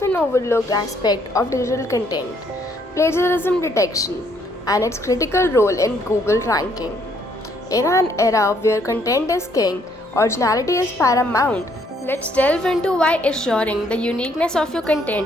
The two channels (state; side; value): normal; both; correlation 0.68